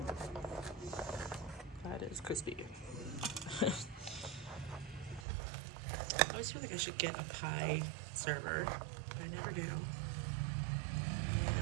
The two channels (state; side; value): drops out; left; at 5.2 s